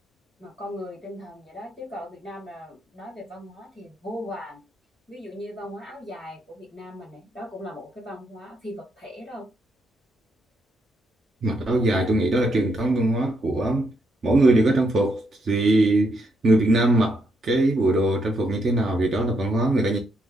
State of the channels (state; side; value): normal; both; correlation 0.77